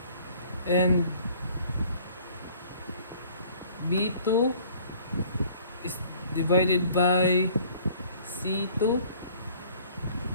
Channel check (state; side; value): inverted; both; correlation -0.54